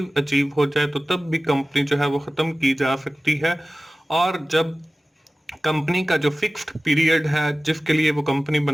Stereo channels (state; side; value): normal; both; correlation 0.96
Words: अचीव हो जाए तो तब भी कंपनी जो है वो ख़त्म की जा सकती है। और जब कंपनी का जो फिक्स्ड पीरियड है जिसके लिए वो कंपनी